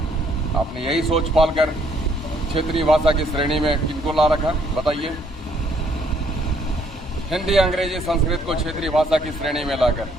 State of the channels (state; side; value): normal; both; correlation 0.66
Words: आपने यही सोच पालकर क्षेत्रीय भाषा की श्रेणी में किनको ला रखा, बताइए। हिंदी, अंग्रेजी, संस्कृत को क्षेत्रीय भाषा की श्रेणी में लाकर